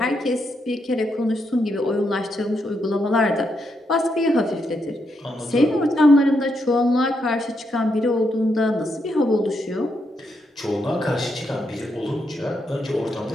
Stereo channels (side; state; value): both; normal; correlation 0.80